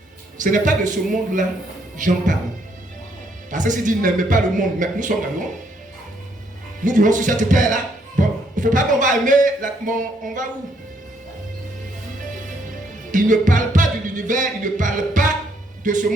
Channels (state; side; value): normal; both; correlation 0.71